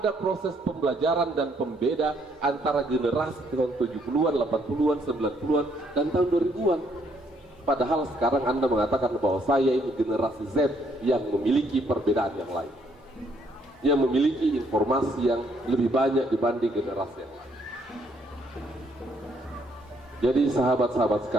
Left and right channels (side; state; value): both; normal; correlation 0.69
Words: proses pembelajaran dan pembeda antara generasi tahun 70-an, 80-an, 90-an, dan tahun 2000-an. Padahal sekarang Anda mengatakan bahwa saya ini generasi Z yang memiliki perbedaan yang lain, yang memiliki informasi yang lebih banyak dibanding generasi yang lain. Jadi sahabat-sahabat